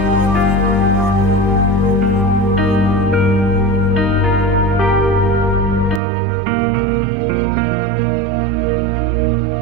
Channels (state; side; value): drops out; left; at 6.0 s